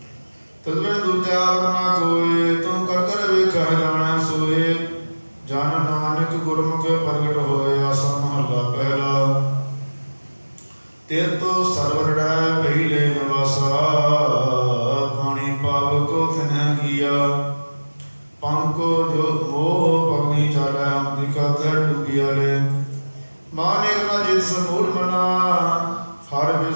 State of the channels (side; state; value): both; inverted; correlation -1.00